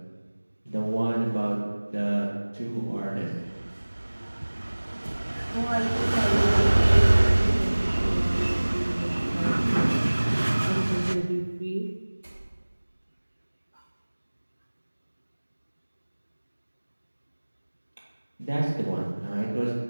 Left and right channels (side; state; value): both; inverted; correlation -1.00